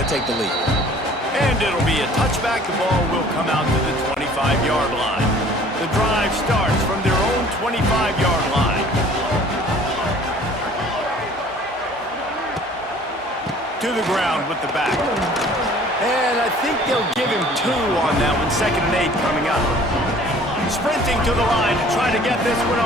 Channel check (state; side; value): normal; both; correlation 0.51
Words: take the lead. And it'll be a touchback. The ball will come out to the 25-yard line. The drive starts from their own 25-yard line. To the ground with the back. And I think they'll give him 2 on that one. 2nd and 8 coming up. Sprinting to the line to try to get this one